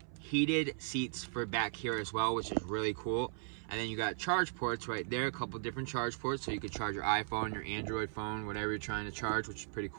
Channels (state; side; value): silent; left; 53 dB below the other